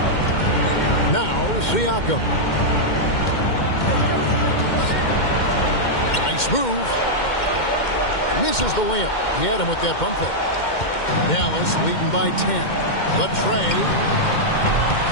Now Siakam. Nice move. Misses the layup. He had him with that bump fake. Dallas leading by 10. The tray.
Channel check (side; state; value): right; late; 2.1 ms